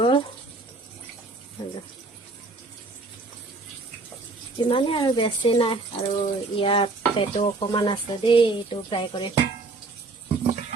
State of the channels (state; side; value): quieter; left; 3.5 dB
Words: ইমানে আৰু বেছি নাই আৰু ইয়াত পেটো অকমান আছে দেই, এইটো ফ্ৰাই কৰি